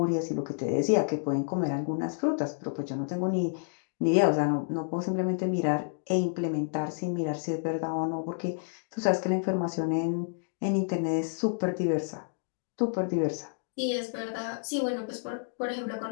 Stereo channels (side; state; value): right; silent; digital silence